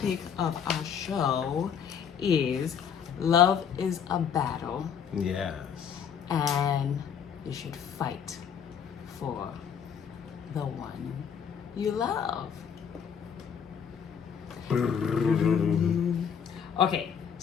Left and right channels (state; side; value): quieter; right; 7.6 dB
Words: of our show is love is a battle Yes. and you should fight for the one you love. Okay,